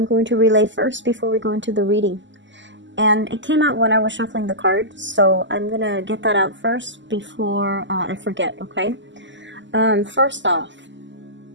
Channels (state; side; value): late; left; 0.54 ms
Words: going to relay first before we go into the reading. And it came out when I was shuffling the cards, so I'm going to get that out first before I forget, okay? First off,